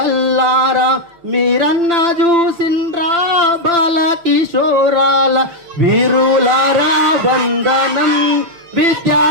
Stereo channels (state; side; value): late; left; 5.9 ms